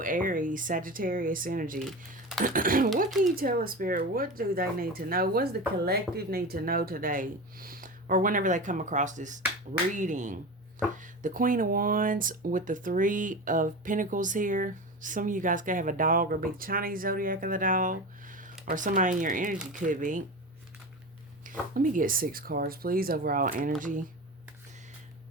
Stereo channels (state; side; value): normal; both; correlation 0.27